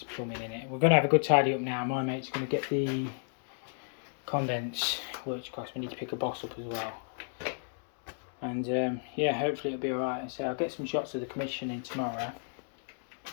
It's plumbing in it. We're going to have a good tidy up now. My mate's going to get the condense, which of course we need to pick a boss up as well. And yeah, hopefully it'll be alright. So I'll get some shots of the commissioning tomorrow.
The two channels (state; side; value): silent; right; 56 dB below the other